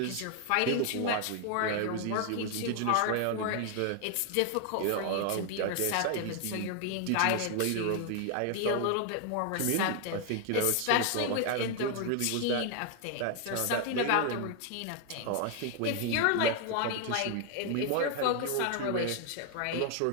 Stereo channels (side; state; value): both; different; correlation 0.00